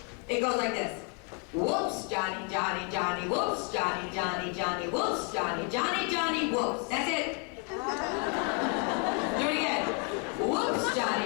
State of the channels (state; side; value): quieter; right; 35.4 dB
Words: It goes like this. Whoops, Johnny, Johnny, Johnny, whoops, Johnny, Johnny, Johnny, whoops, Johnny, Johnny, Johnny, whoops. That's it. Do it again. Whoops,